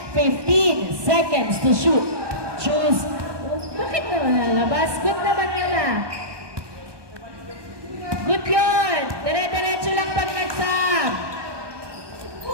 15 seconds to shoot. Choose. Bakit naman nalabas? Good naman nila. Good yun. Dire-diretso lang pag nag-sub.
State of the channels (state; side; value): late; left; 1.2 ms